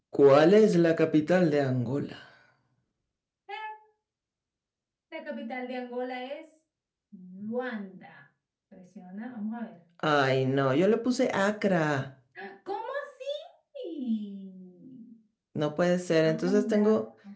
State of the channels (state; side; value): identical; both; correlation 1.00